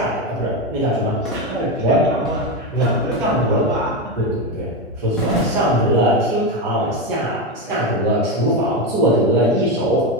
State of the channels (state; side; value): normal; both; correlation 0.13